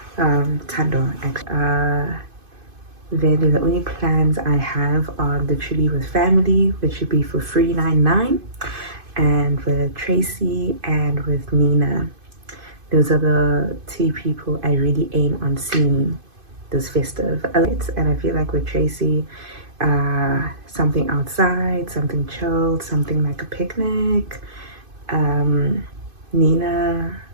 Tando, actually. Then the only plans I have are literally with family, which would be for 399, and with Tracy and with Nina. Those are the two people I really aim on seeing this festive. And I feel like with Tracy, something outside, something chilled, something like a picnic. Nina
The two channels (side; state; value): left; late; 2.5 ms